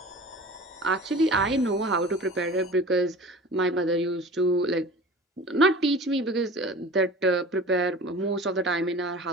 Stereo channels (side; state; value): both; normal; correlation 0.39